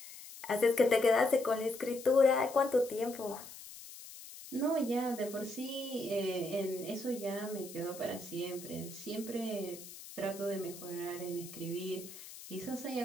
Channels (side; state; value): left; noise; hiss, 15 dB below the sound